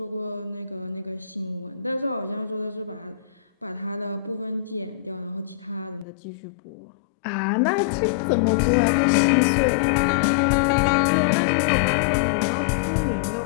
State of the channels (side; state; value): right; drops out; at 6.1 s